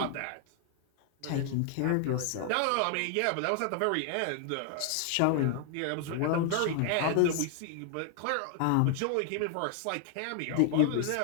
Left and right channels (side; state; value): both; different; correlation 0.00